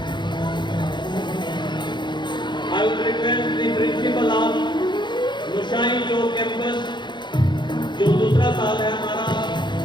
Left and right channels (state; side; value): late; right; 0.22 ms